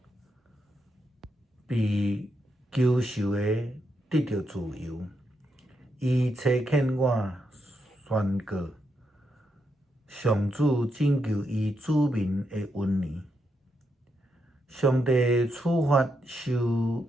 被囚受的得到自由。伊差遣我宣告上主拯救伊子民的恩年。上帝处罚受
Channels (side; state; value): both; normal; correlation 0.82